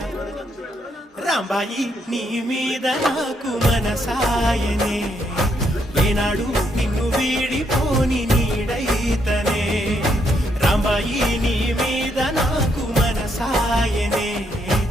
రాంబాయి నీ మీద నాకు మనసాయనే ఏనాడు నిన్ను వీడిపోని నీడైతనే రాంబాయి నీ మీద నాకు మనసాయనే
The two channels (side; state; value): both; normal; correlation 0.75